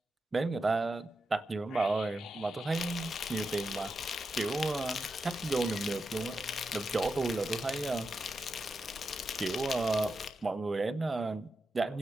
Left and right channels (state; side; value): normal; both; correlation 0.88